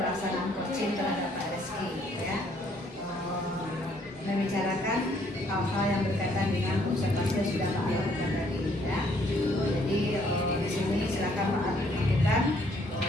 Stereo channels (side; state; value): both; normal; correlation 0.65